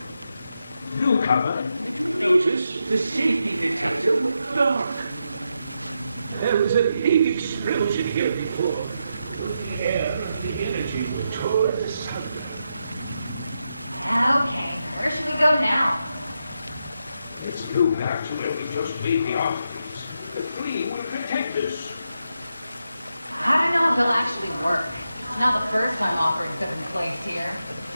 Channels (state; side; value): inverted; both; correlation -0.85